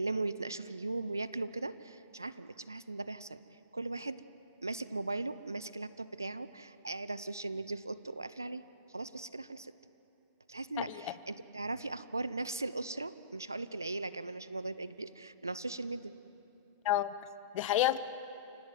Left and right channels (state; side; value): inverted; both; correlation -0.50